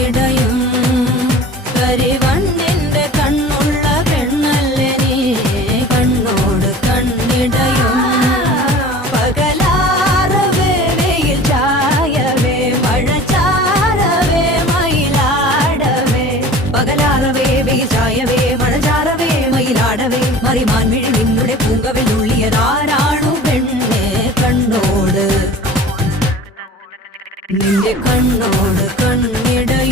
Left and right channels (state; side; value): normal; both; correlation 0.42